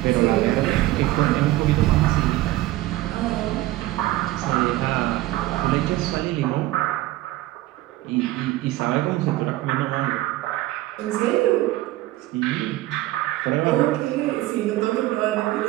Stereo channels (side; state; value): left; quieter; 17.0 dB